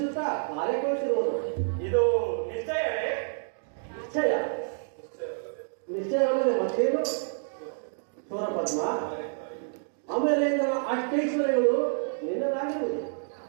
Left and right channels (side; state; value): left; silent; digital silence